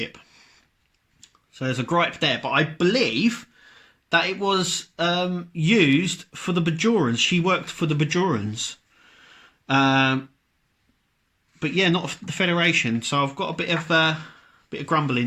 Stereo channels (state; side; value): identical; both; correlation 1.00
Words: So there's a gripe there. But I believe that it was used for the Bajorans. She worked for the Bajorans. But yeah, not the Federation. So I've got a bit of grumble